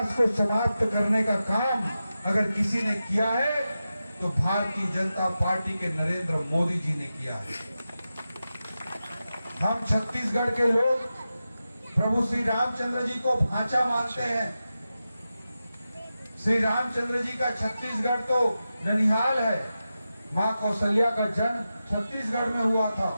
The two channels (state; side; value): inverted; both; correlation -0.92